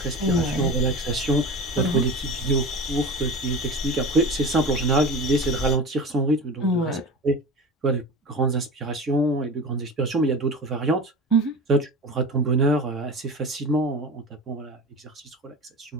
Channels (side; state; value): both; normal; correlation 0.32